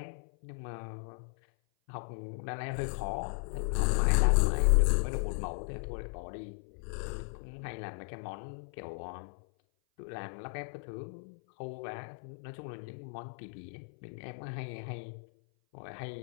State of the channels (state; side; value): silent; right; 54 dB below the other